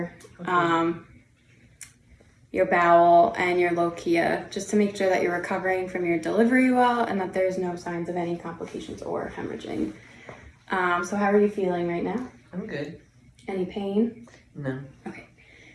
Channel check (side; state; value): both; identical; correlation 1.00